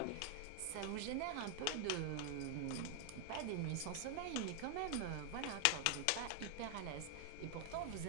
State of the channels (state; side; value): different; both; correlation 0.00